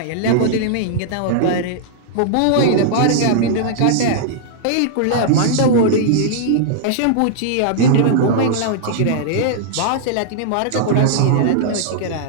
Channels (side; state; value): both; different; correlation -0.02